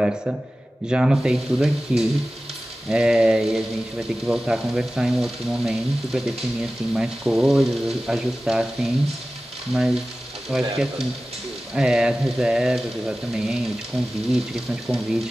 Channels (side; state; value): both; normal; correlation 0.96